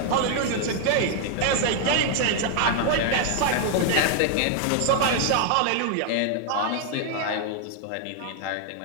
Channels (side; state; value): both; different; correlation 0.00